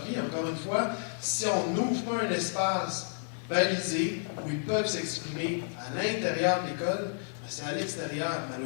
vie. Encore une fois, si on n'ouvre pas un espace balisé où ils peuvent s'exprimer à l'intérieur de l'école, ben c'est à l'extérieur,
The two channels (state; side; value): silent; right; digital silence